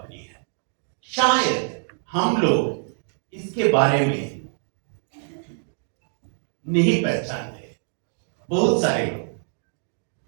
है, शायद हम लोग इसके बारे में नहीं पहचानते, बहुत सारे लोग।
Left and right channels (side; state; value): left; silent; 62 dB below the other